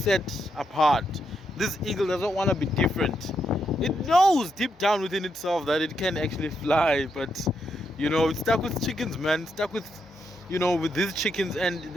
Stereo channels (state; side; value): normal; both; correlation 0.80